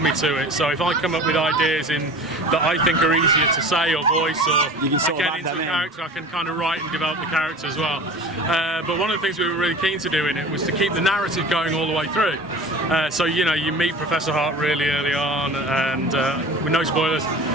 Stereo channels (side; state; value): both; normal; correlation 0.38